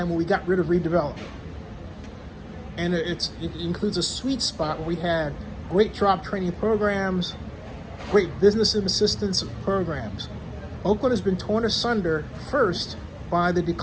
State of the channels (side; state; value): both; identical; correlation 1.00